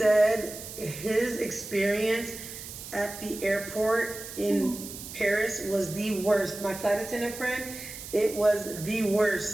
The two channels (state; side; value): noise; right; hiss, 11 dB below the sound